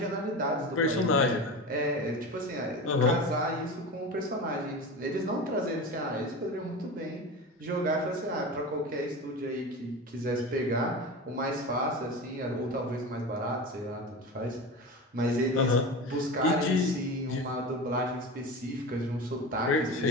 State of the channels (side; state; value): both; normal; correlation 0.27